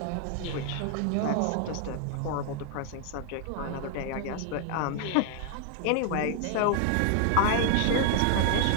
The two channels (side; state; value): both; different; correlation 0.00